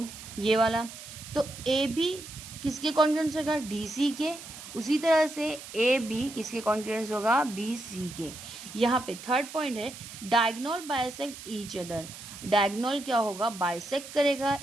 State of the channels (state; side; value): noise; right; hiss, 14 dB below the sound